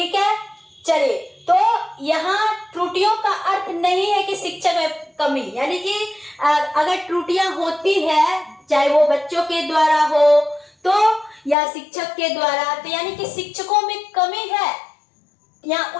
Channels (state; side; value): drops out; right; at 11.6 s